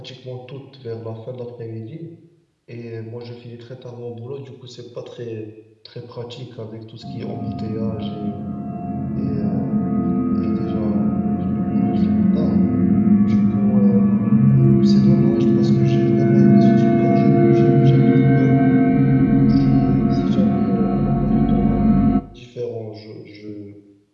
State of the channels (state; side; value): identical; both; correlation 1.00